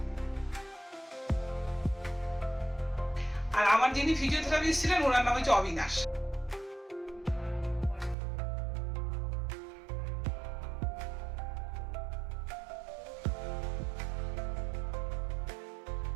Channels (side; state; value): left; drops out; at 8.2 s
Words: আর আমার যিনি ফিজিওথেরাপিস্ট ছিলেন ওনার নাম হচ্ছে অবিনাশ।